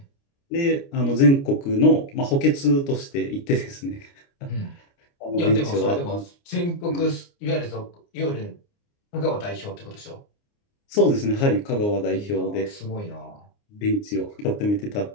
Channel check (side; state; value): right; late; 29 ms